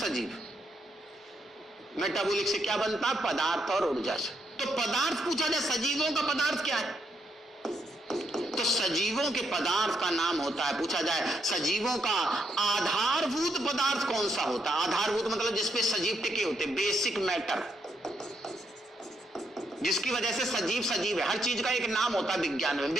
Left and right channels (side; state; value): both; normal; correlation 0.78